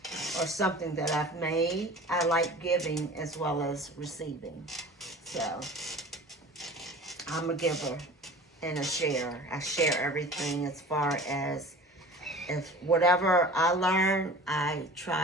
or something that I've made. I like giving as well as receiving. So, I'm a giver and a sharer. I share everything as far as if whatever I learn, I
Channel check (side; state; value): both; normal; correlation 0.41